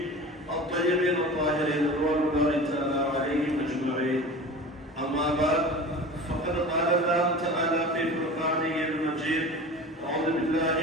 الطيبين الطاهرين رضوان الله تعالى عليهم أجمعين. أما بعد فقد قال الله تعالى في فرقانه المجيد: أعوذ بالله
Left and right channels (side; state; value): both; normal; correlation 0.35